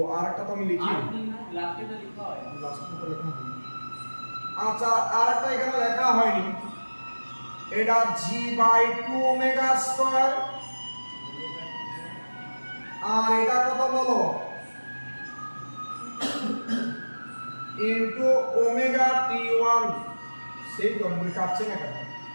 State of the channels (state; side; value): inverted; both; correlation -1.00